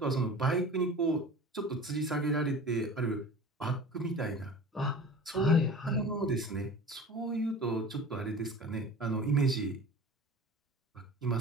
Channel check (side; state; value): both; normal; correlation 0.38